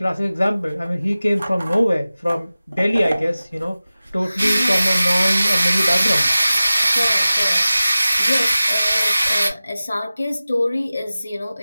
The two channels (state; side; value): inverted; both; correlation -0.97